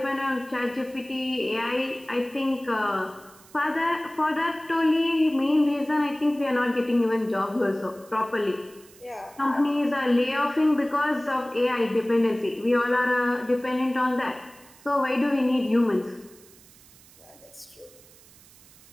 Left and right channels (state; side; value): noise; right; hiss, 24 dB below the sound